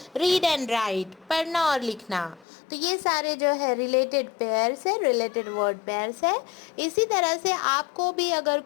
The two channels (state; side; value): drops out; right; at 2.5 s